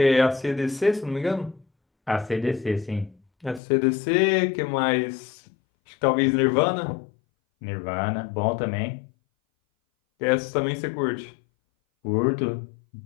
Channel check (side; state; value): right; drops out; at 3.6 s